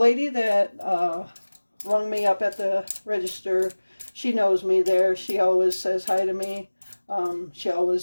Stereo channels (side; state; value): both; inverted; correlation -1.00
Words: that rung me up at the register, she knows me there. She always says hi to me. She